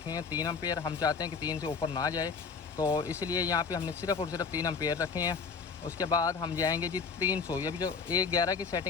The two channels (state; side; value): quieter; right; 5.3 dB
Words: हैं 3 एम्पेयर। हम चाहते हैं कि 3 से ऊपर ना जाए, तो इसलिए यहाँ पे हमने सिर्फ और सिर्फ 3 एम्पेयर रखे हैं। उसके बाद हम जाएंगे जी 300। ये भी जो 111 की